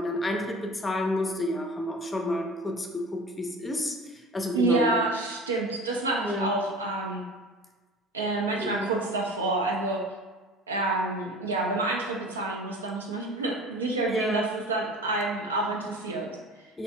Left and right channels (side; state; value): both; normal; correlation 0.37